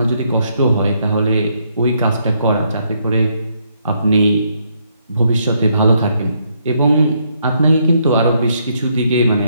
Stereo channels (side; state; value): both; inverted; correlation -0.74